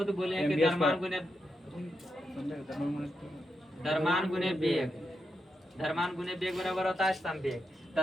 बोले हैं कि द्रव्यमान गुने वेग। द्रव्यमान गुने वेग बराबर होता है संवेग।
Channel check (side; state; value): both; normal; correlation 0.85